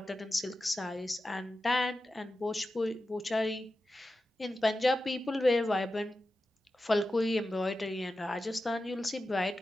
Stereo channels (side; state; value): both; normal; correlation 0.92